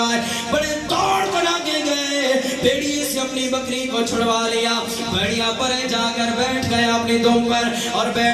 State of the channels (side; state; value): both; identical; correlation 1.00